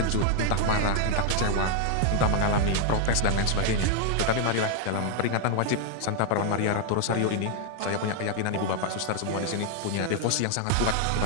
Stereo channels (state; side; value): different; both; correlation 0.00